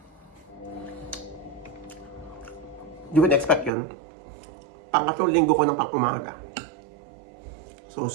Hindi ko in-expect yun. Pangatlong linggo ko ng pang umaga. So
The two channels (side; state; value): left; drops out; at 3.7 s